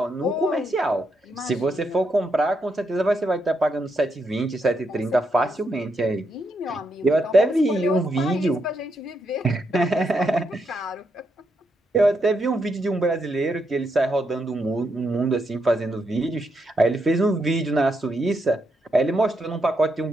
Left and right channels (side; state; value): both; normal; correlation 0.80